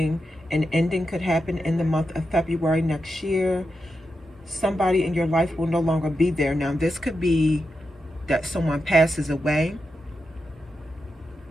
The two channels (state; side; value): normal; both; correlation 0.87